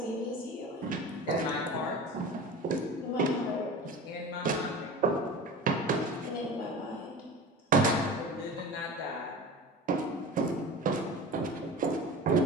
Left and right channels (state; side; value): normal; both; correlation 0.34